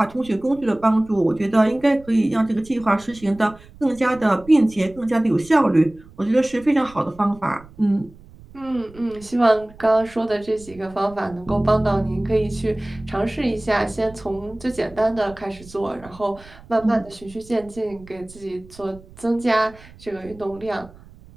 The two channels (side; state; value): right; noise; rumble, 22 dB below the sound